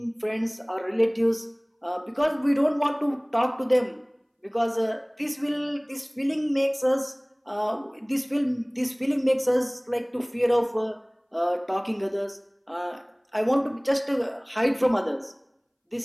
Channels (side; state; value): both; identical; correlation 1.00